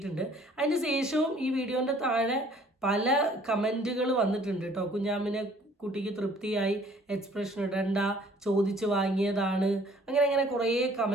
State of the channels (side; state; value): both; normal; correlation 0.57